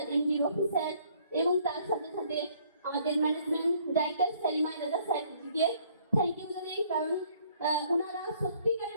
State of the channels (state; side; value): inverted; both; correlation -0.62